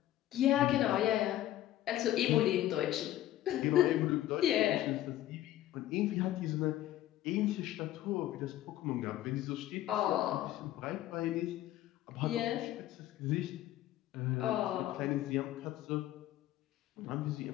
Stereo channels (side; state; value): right; quieter; 13.7 dB